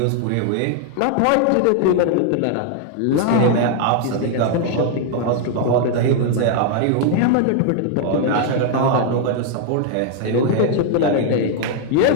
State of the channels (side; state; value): both; different; correlation 0.00